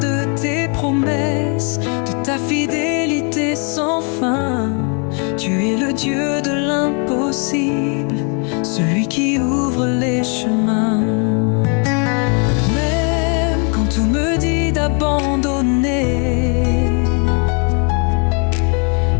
tes promesses, de ta fidélité sans fin. Tu es le Dieu de l'impossible, celui qui ouvre les chemins. Même quand tout me dit d'abandonner,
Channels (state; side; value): quieter; right; 37.8 dB